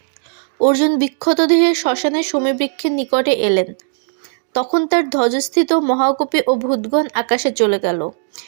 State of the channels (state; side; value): silent; left; digital silence